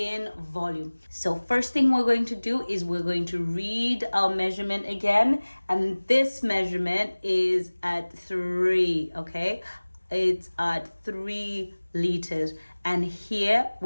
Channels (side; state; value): both; inverted; correlation -1.00